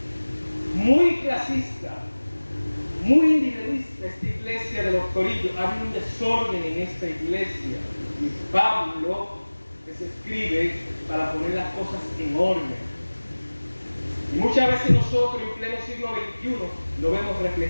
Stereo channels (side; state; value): both; inverted; correlation -1.00